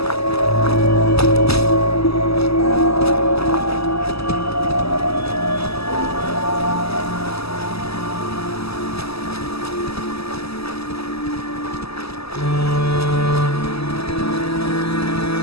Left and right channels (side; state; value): right; late; 0.78 ms